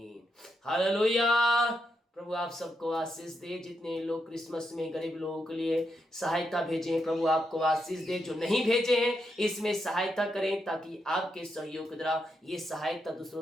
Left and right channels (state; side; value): normal; both; correlation 0.82